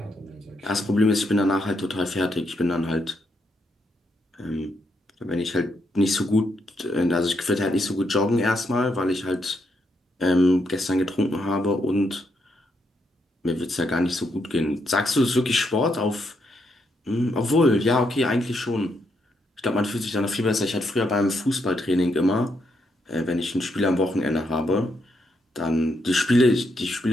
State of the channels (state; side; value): normal; both; correlation 0.78